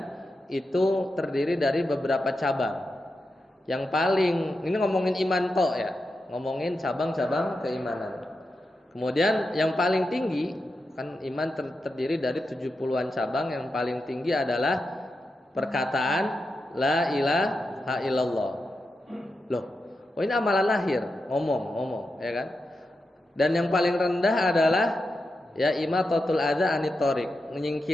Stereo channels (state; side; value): normal; both; correlation 0.88